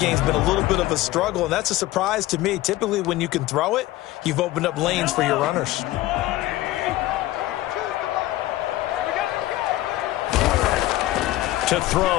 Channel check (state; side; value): quieter; right; 16.3 dB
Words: been a little bit of a struggle, and that's a surprise to me. Typically, when you can throw it, you've opened up lanes for your runners. To